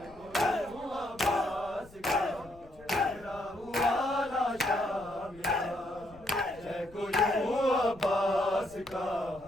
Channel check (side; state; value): left; noise; rumble, 22 dB below the sound